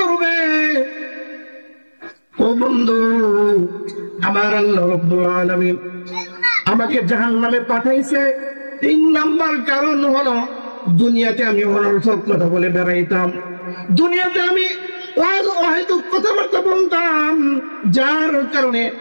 ও বন্ধু, আমার আল্লাহ রাব্বুল আলামিন আমাকে জাহান্নামে পাঠাইছে, তিন নাম্বার কারণ হলো দুনিয়াতে আমি অনর্থক কথা বলে বেড়াইতাম, দুনিয়াতে আমি অহেতুক কথাবার্তা বলতাম, যার কারণে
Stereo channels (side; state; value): both; inverted; correlation -1.00